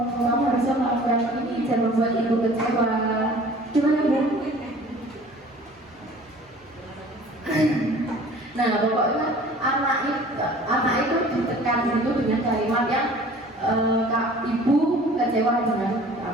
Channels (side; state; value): both; normal; correlation 0.48